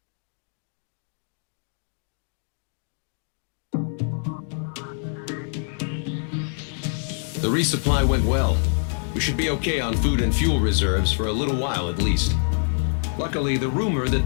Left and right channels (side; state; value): right; silent; digital silence